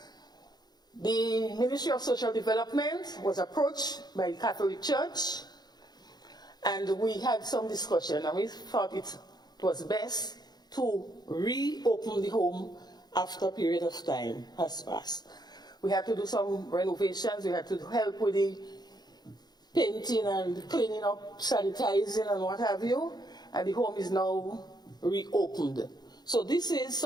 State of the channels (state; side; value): late; right; 0.20 ms